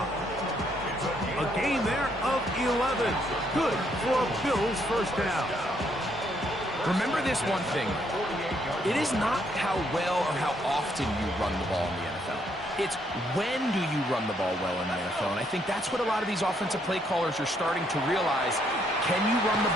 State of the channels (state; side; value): normal; both; correlation 0.72